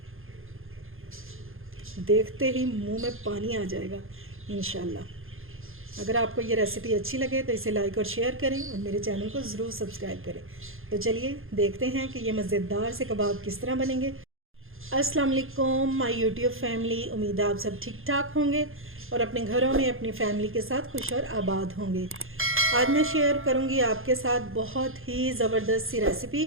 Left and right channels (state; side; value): late; left; 0.60 ms